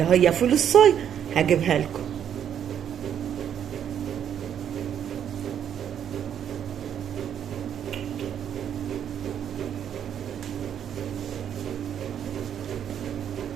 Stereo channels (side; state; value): left; quieter; 9.2 dB